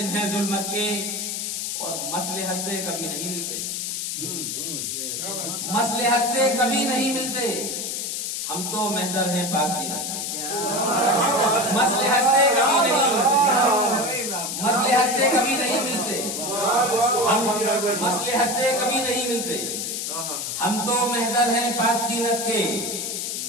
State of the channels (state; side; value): noise; left; hiss, 3 dB below the sound